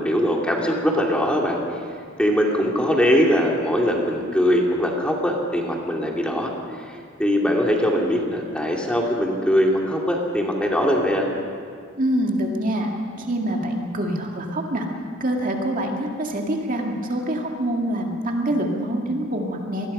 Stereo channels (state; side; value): normal; both; correlation 0.66